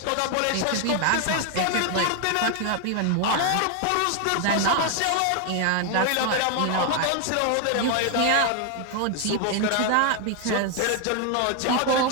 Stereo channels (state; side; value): different; both; correlation 0.01